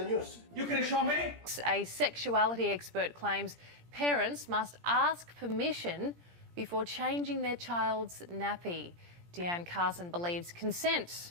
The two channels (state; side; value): late; left; 17 ms